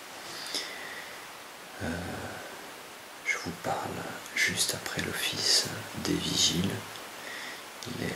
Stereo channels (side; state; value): both; identical; correlation 1.00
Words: Je vous parle juste après l'office des vigiles. Il est